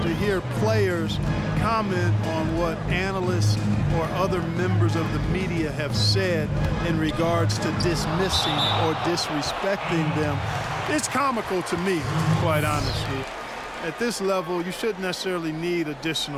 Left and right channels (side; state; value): both; identical; correlation 1.00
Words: hear players comment on what analysts or other members of the media have said in regards to dismissing or disrespecting them. It's comical to me, quite honestly. At this level, you shouldn't necessarily need